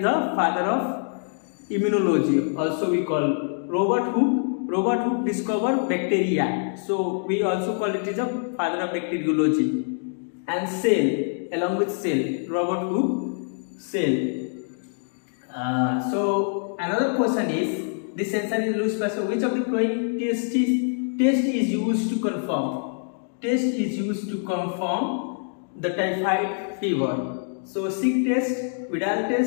father of immunology, also we call. Robert Hooke discovered bacteria, so we also call it is a father of bacteriology. And cell, along with cell, Robert Hooke, cell. So another question is, this answer is Louis Pasteur. Which of the following test is used to confirm? Test is used to confirm the typhoid fever. So sick test, Vidal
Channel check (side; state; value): right; silent; digital silence